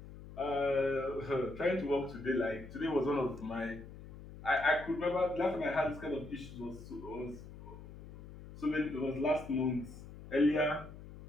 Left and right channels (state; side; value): noise; left; hum, 15 dB below the sound